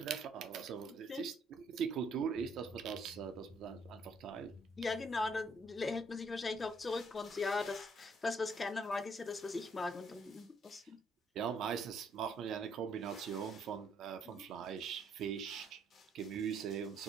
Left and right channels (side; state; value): both; normal; correlation 0.68